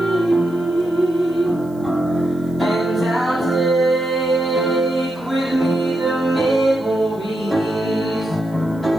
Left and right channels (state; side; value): noise; right; hiss, 29 dB below the sound